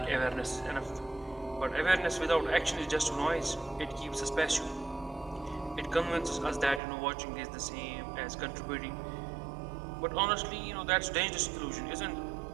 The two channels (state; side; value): drops out; left; at 6.8 s